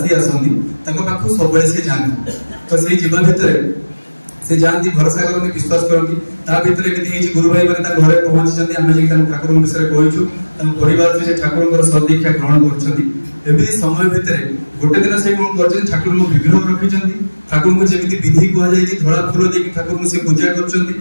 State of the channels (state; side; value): inverted; both; correlation -1.00